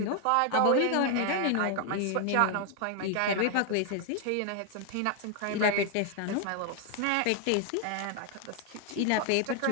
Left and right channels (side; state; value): both; different; correlation 0.00